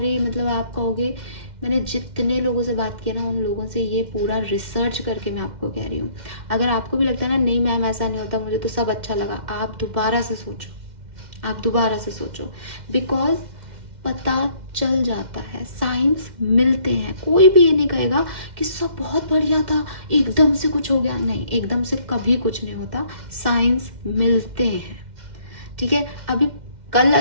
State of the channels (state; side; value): late; left; 2.1 ms